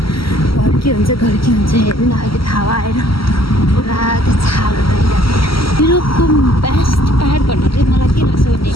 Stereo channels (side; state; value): right; late; 0.75 ms